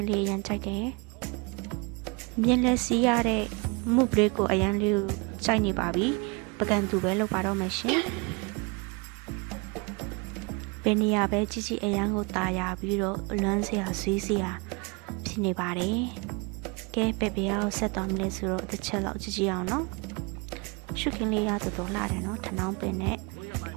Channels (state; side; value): quieter; left; 29.6 dB